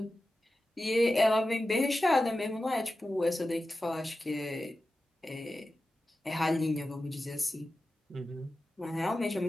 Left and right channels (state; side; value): normal; both; correlation 0.93